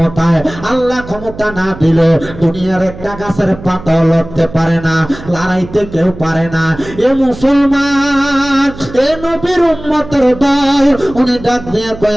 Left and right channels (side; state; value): right; noise; hum, 15 dB below the sound